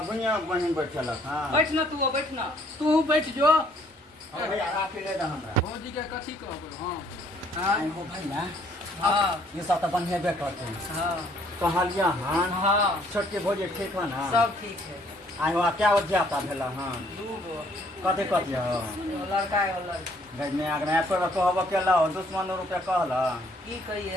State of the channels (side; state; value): both; normal; correlation 0.63